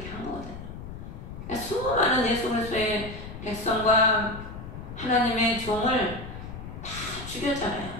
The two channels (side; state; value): left; noise; rumble, 10 dB below the sound